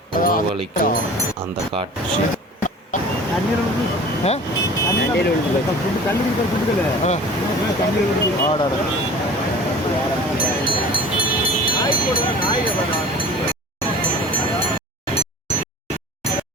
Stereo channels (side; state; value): both; normal; correlation 0.43